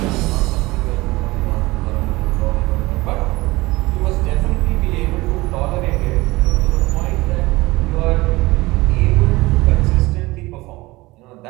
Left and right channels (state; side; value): quieter; left; 20.8 dB